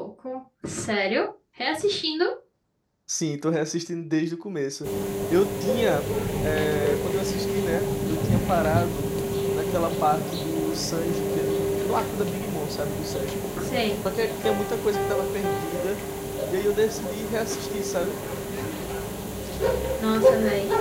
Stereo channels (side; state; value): both; identical; correlation 1.00